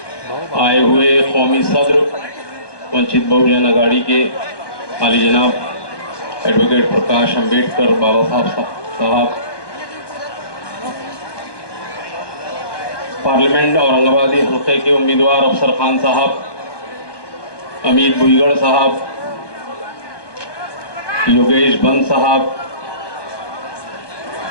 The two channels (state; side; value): late; right; 1.2 ms